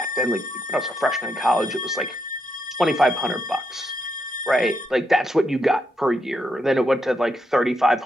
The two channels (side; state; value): both; normal; correlation 0.80